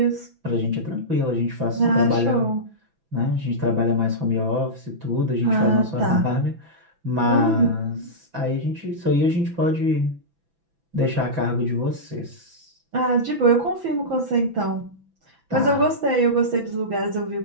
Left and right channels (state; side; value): late; left; 6.0 ms